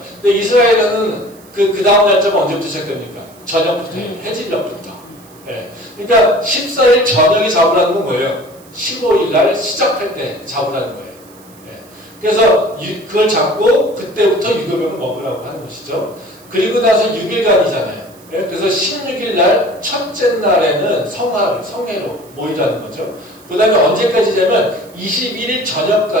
근데 이스라엘은 그 다음 날짜가 언제부터 시작됩니까? 저녁부터 해요. 해질녘부터. 그러니까 14일 저녁이 잡으라는 건 뭐예요? 15일 날 시작할 때 잡으라는 거예요. 그래서 그걸 잡고 그때부터 유교병을 먹으라고 하는 것이죠. 그리고 나서 6일간이잖아요. 그래서 16일 날 첫째 날에는 성회로 모이라는 거죠. 그 다음에 언제까지냐면 21일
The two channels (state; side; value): noise; right; hiss, 25 dB below the sound